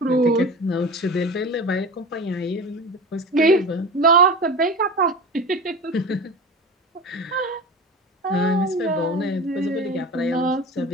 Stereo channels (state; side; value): normal; both; correlation 0.31